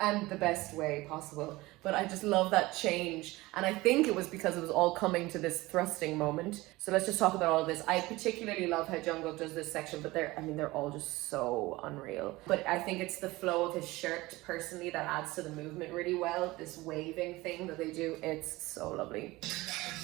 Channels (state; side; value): quieter; left; 20.2 dB